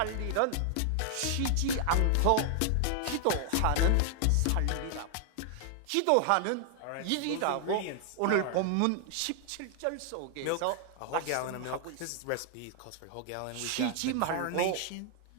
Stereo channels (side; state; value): both; different; correlation 0.00